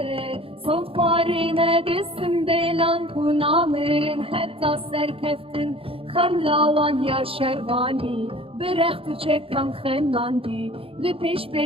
صفاری ندستم دلان کنامرن حتی سرکفتن خملاوان یا شروانی برخت چکم خناندی لپیش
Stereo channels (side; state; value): left; late; 0.27 ms